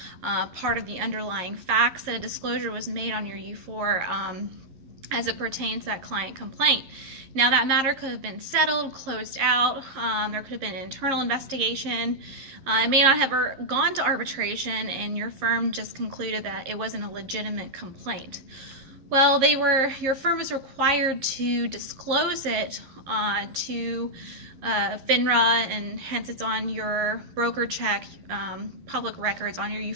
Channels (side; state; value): left; late; 11 ms